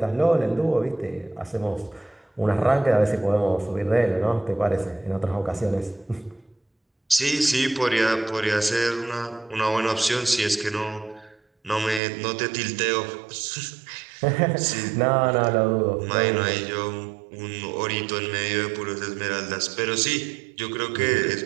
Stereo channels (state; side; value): drops out; left; at 12.0 s